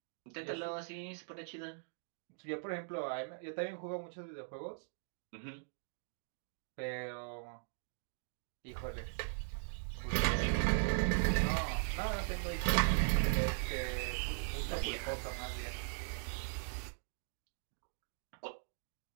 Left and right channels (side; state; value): left; silent; digital silence